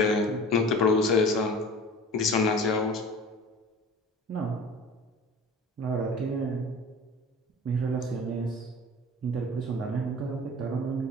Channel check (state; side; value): normal; both; correlation 0.40